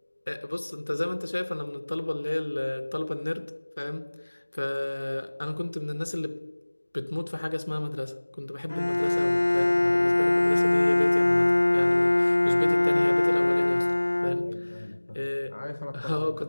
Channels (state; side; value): inverted; both; correlation -1.00